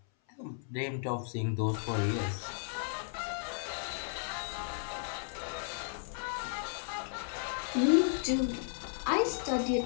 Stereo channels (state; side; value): silent; right; 55 dB below the other